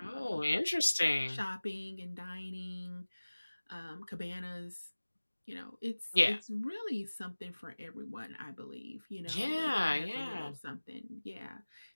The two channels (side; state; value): both; inverted; correlation -1.00